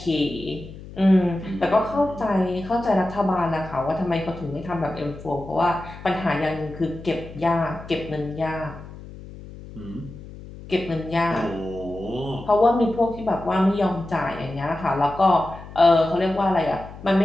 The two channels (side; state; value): left; noise; hum, 15 dB below the sound